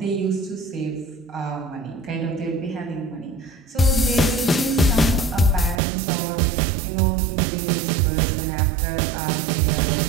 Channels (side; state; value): left; drops out; at 5.8 s